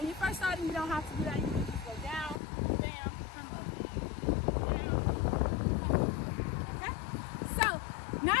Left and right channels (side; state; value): right; drops out; at 2.4 s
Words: you're first starting, you don't have to do that. You can just go down, bam, come up, down, come up. Okay? So now